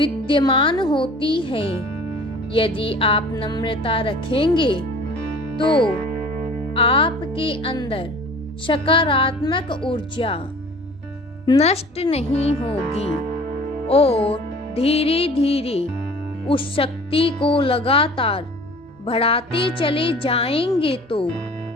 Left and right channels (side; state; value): both; normal; correlation 0.46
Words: होती है, यदि आप नम्रता रखेंगे तो आपके अंदर सकारात्मक ऊर्जा नष्ट नहीं होगी और धीरे धीरे उस शक्ति को लगातार बढ़ाते चले जाएंगे तो